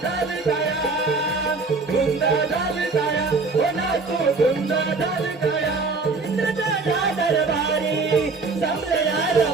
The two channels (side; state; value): left; quieter; 4.0 dB